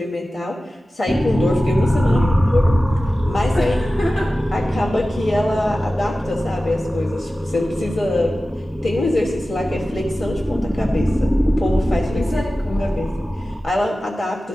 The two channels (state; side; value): normal; both; correlation 0.95